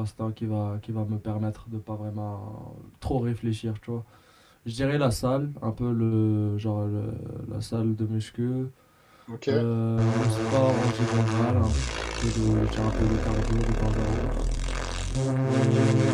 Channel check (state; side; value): identical; both; correlation 1.00